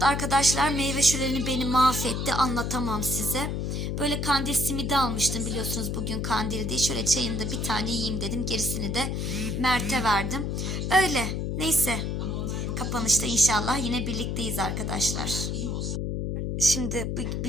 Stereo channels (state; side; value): noise; left; hum, 1 dB below the sound